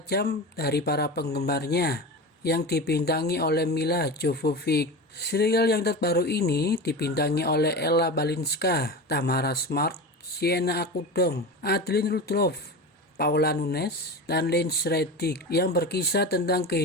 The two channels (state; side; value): normal; both; correlation 0.27